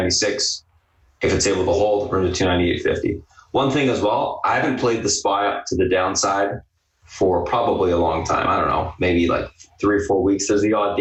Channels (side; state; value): both; identical; correlation 1.00